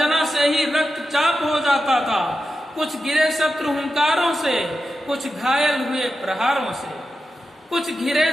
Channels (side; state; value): both; normal; correlation 0.90